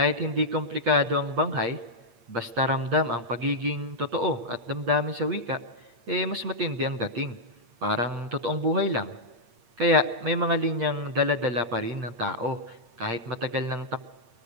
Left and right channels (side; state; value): left; late; 8.6 ms